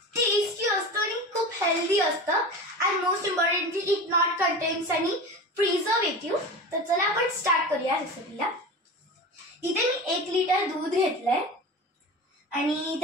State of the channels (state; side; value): normal; both; correlation 0.30